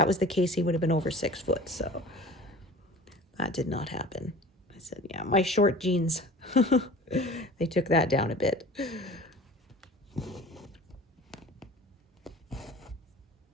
was the case, he would have been over 6 foot, so that did not happen. I said, yeah, my short jeans, they took that down a bit.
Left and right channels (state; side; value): normal; both; correlation 0.42